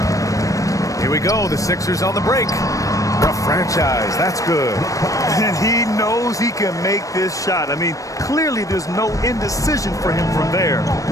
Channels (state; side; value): late; right; 0.16 ms